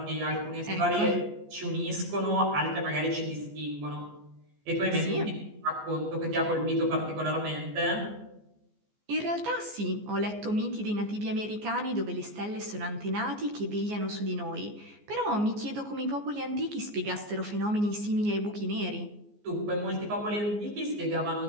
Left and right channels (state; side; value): late; left; 14 ms